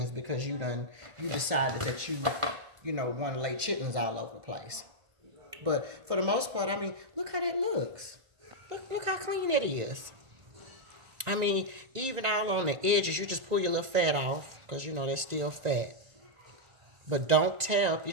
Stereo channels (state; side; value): late; left; 1.5 ms